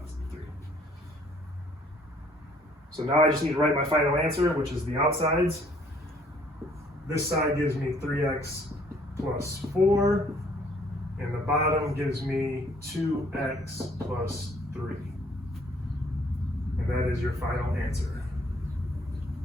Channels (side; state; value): both; normal; correlation 0.61